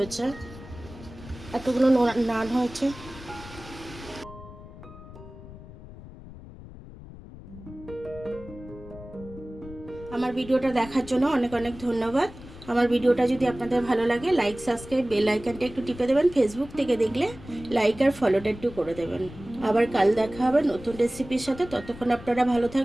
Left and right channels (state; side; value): noise; left; rumble, 16 dB below the sound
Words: এতগুলো নান হয়েছে। আমার ভিডিওটা দেখার জন্য অনেক অনেক ধন্যবাদ। আমার ভিডিওটা যদি আপনাদের ভালো লাগে, লাইক, সাবস্ক্রাইব, বেল আইকনটা একটু টিপে দেবেন। ফেসবুক থেকে দেখলে লাইক আর ফলোটা একটু করে দেবেন। আবার কাল দেখা হবে নতুন রেসিপির সাথে। ততক্ষণ আপনারা ভালো